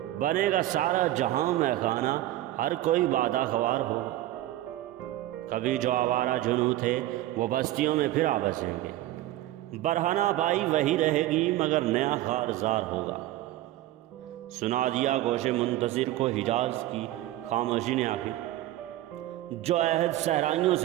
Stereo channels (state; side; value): quieter; left; 15.0 dB